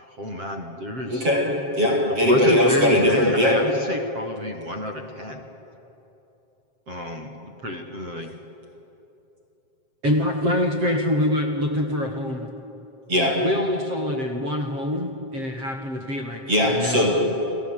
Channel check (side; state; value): left; late; 7.5 ms